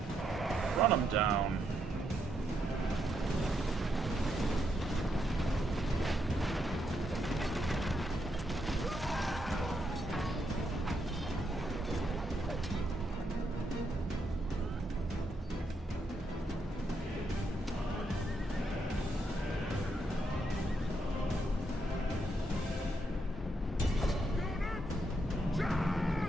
Run them down.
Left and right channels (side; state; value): both; normal; correlation 0.78